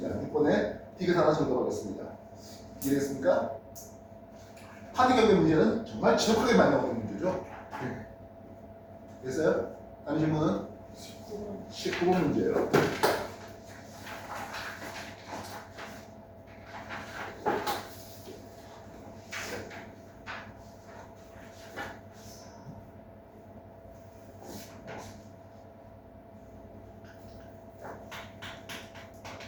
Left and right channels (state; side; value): identical; both; correlation 1.00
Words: 6번에 T가 하나 정답하겠습니다. 이해됐습니까? 파리 경계 문제는 정말 지독하게 많이 나오는 문제죠. 됐어요? 다음 질문은 19번 문제예요.